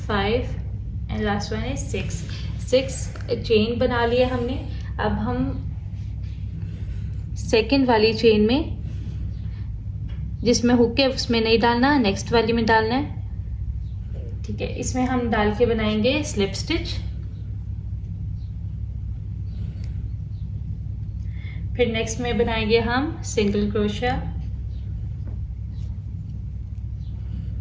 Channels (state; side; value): identical; both; correlation 1.00